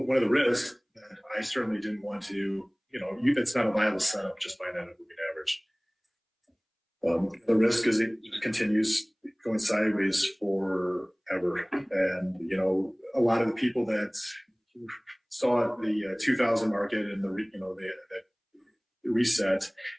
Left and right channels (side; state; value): both; identical; correlation 1.00